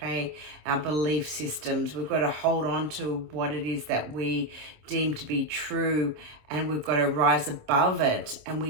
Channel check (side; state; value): left; late; 26 ms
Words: Our belief systems. We've got to hold on to what it is that we deem to be true, and we've got to rise above it, and